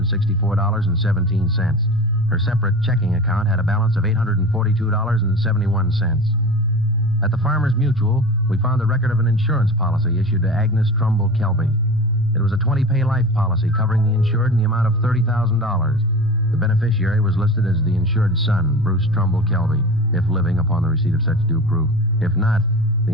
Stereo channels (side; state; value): both; normal; correlation 0.33